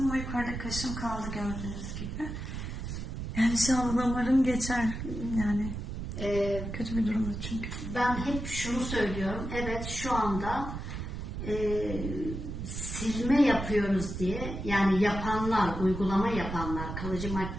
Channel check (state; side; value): noise; right; rumble, 6 dB below the sound